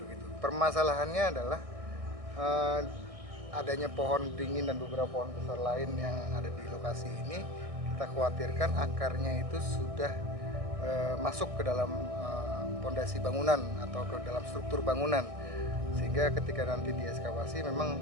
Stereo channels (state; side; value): late; left; 1.6 ms